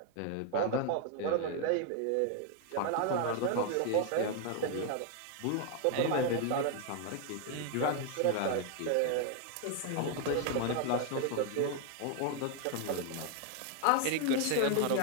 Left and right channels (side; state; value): both; different; correlation 0.00